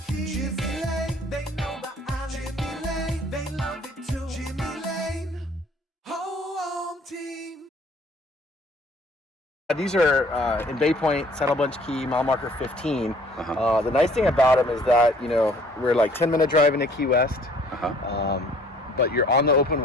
keys. Jimmy Lane, they know the island. Jimmy Lane, they love it too. Jimmy Lane, home team. These are in Bay Point, Saddle Bunch Key, mile marker 15. The nice thing about them is that, you know, we're like 10-minute drive into Key West. But you're on the open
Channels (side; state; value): both; normal; correlation 0.56